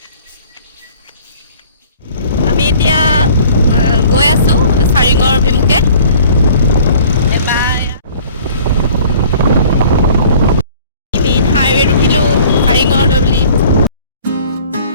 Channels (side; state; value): both; inverted; correlation -0.51